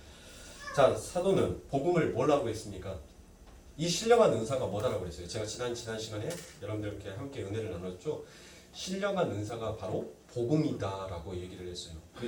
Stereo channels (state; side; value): identical; both; correlation 1.00